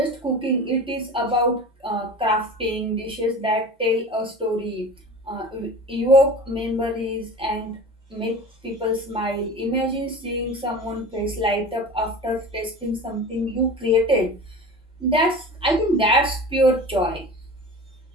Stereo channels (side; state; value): both; normal; correlation 0.36